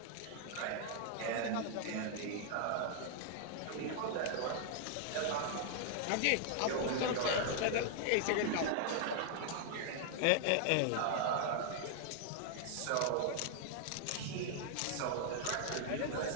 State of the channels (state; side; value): different; both; correlation -0.01